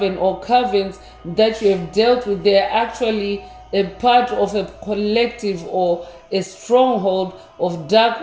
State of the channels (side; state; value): both; identical; correlation 1.00